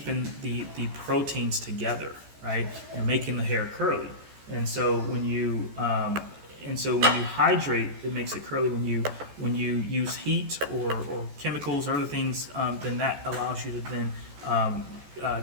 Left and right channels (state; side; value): late; left; 14 ms